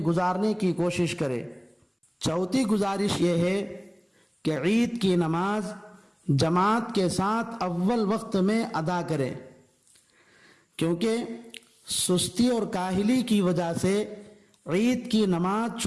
کی کوشش کرے۔ چوتھی گزارش یہ ہے کہ عید کی نماز جماعت کے ساتھ اول وقت میں ادا کرے، کیونکہ سستی اور کاہلی کی وجہ سے عید کی نماز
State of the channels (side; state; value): both; identical; correlation 1.00